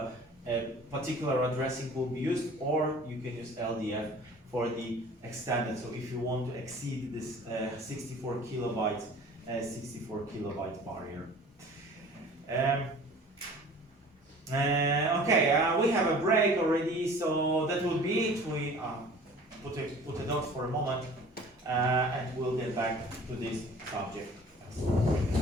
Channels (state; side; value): normal; both; correlation 0.46